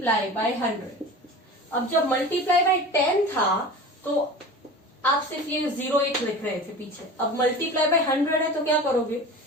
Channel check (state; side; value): normal; both; correlation 0.35